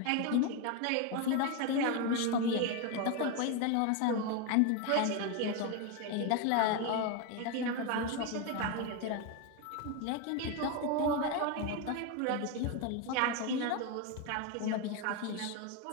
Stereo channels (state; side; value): different; both; correlation 0.02